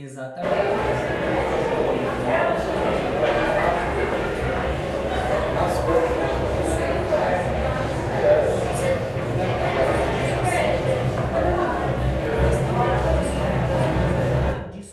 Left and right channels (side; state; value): both; identical; correlation 1.00